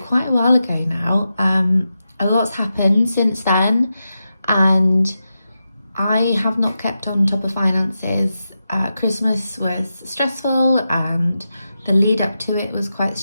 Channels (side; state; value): both; inverted; correlation -0.89